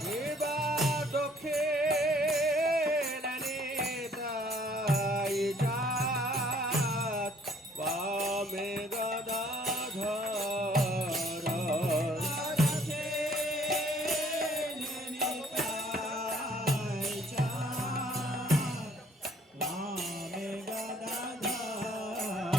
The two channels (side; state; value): both; normal; correlation 0.61